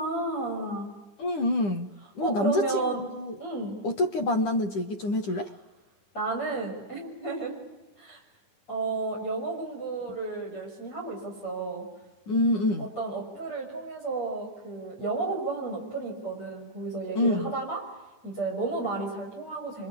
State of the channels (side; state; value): right; late; 10 ms